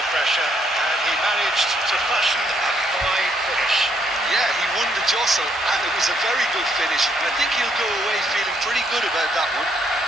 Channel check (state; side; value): normal; both; correlation 0.71